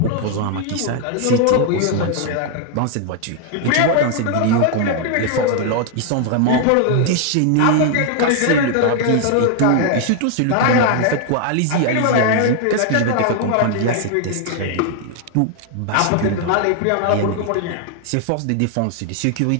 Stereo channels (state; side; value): different; both; correlation 0.00